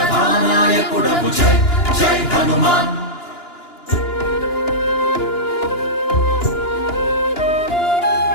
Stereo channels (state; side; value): late; right; 2.9 ms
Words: జై జై హనుమాన్